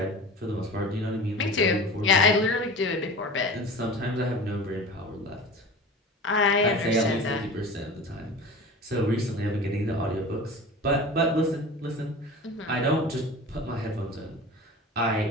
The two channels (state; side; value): normal; both; correlation 0.36